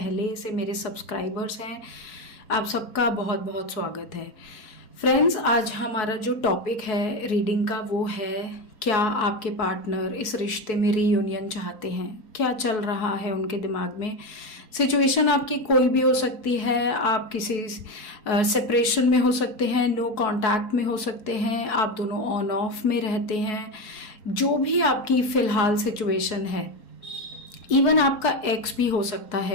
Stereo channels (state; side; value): late; right; 4.7 ms